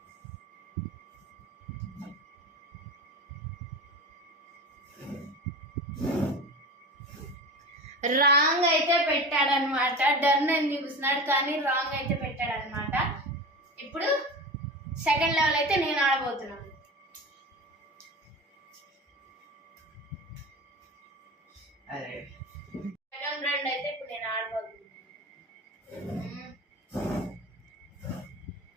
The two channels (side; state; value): both; normal; correlation 0.30